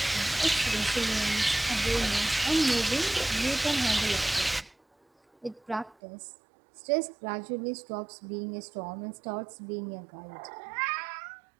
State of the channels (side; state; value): left; drops out; at 6.0 s